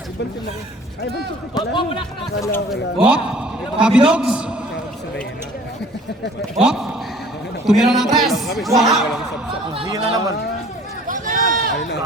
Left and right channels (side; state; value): both; normal; correlation 0.50